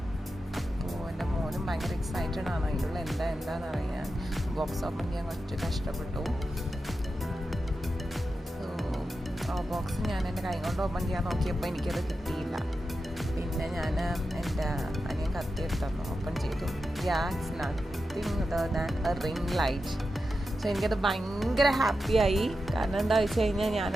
അപ്പോൾ എൻ്റെ മോനും ഭയങ്കര എക്സൈറ്റഡ് ആണ് അതിലുള്ള എന്താണെന്ന് അറിയാൻ. ബോക്സ് ഓപ്പൺ ചെയ്യാൻ കുറച്ച് കഷ്ടപ്പെട്ടു. സോ ആ ബോക്സ് ഞാൻ എൻ്റെ കൈ കൊണ്ട് ഓപ്പൺ ചെയ്യാൻ നോക്കിയപ്പോൾ എനിക്കത് കിട്ടിയില്ല. പിന്നെ ഞാൻ എൻ്റെ അനിയൻ കത്തിയെടുത്തു, ഓപ്പൺ ചെയ്തു. It's nothing other than A ring light. So എനിക്കത് ഭയങ്കര ഹാപ്പിയായി. കാരണം എന്താ വെച്ച് കഴിഞ്ഞാൽ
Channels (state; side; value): normal; both; correlation 0.90